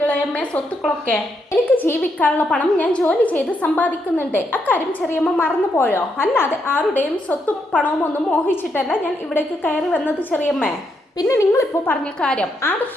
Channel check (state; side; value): normal; both; correlation 0.79